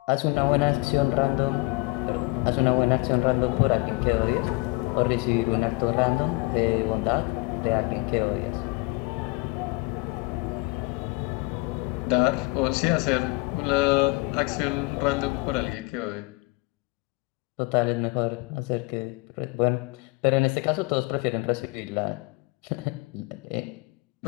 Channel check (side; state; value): right; quieter; 26.1 dB